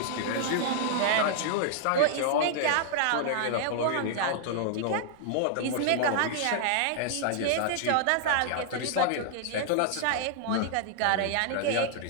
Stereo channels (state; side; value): different; both; correlation -0.01